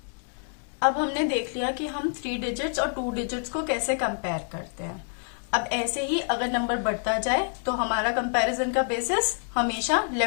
अब हमने देख लिया कि हम 3 डिजिट्स और 2 डिजिट्स को कैसे कंपेयर करते हैं। अब ऐसे ही अगर नंबर बढ़ता जाए तो हमारा कंपैरिजन का बेसिस हमेशा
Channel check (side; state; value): right; silent; 60 dB below the other